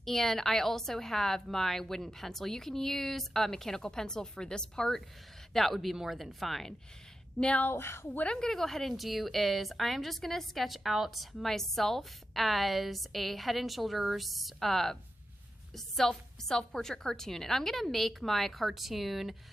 And I also have my wooden pencil. You can use a mechanical pencil for this part. That would be more than fine. Now, what I'm going to go ahead and do is I'm just going to sketch out myself as a head and shoulders self-portrait cartoon. And I'm going to make my cartoon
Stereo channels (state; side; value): normal; both; correlation 0.90